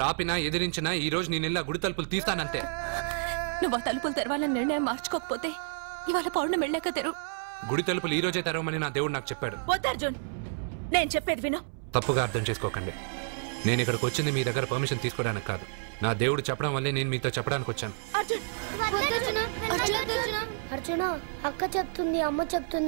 ఆపినా ఎదిరించినా ఈ రోజు నేను గుడి తలుపులు తీస్తానంతే. నువ్వు ఆ తలుపులు తెరవాలని నిర్ణయం మార్చుకోకపోతే ఇవాళ పౌర్ణమి వెళ్ళాక తెరు. గుడి తలుపులు ఈ రోజే తెరవమని నా దేవుడు నాకు చెప్పాడు. వద్దు అర్జున్, నేను చెప్పేది విను. తప్పుగా అర్థం చేసుకోకండి. నేను ఇక్కడికి వచ్చింది మీ దగ్గర పర్మిషన్ తీసుకోవడానికి కాదు. నా దేవుడు చెప్పడం వల్లే నేను మీతో చెప్పడానికి వచ్చాను. అర్జున, అక్క చెప్తుంది, అమ్మ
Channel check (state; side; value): silent; left; 58 dB below the other